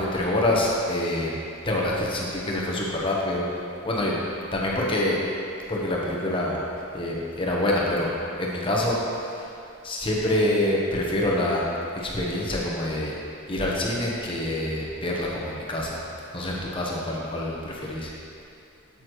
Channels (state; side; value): normal; both; correlation 0.26